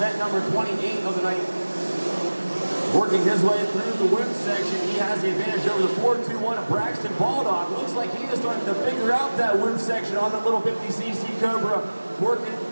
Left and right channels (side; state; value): both; inverted; correlation -1.00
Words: number 28 of the night. Working his way through the women's section, he has the advantage over the 421 of Braxton Baldog. Looks like he is starting to figure out that women's section on that little 50cc Cobra, working